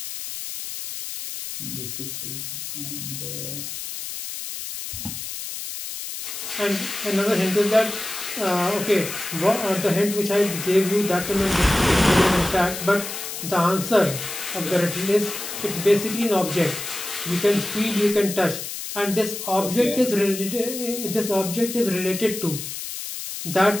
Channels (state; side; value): noise; left; hiss, 7 dB below the sound